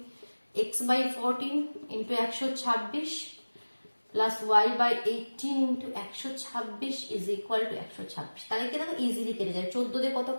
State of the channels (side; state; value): both; inverted; correlation -1.00